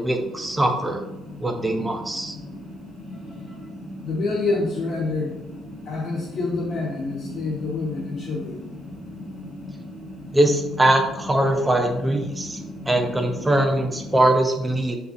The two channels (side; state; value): both; normal; correlation 0.82